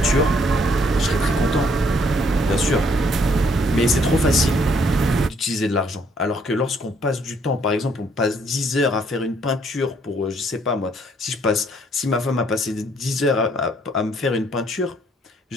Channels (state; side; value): normal; both; correlation 0.66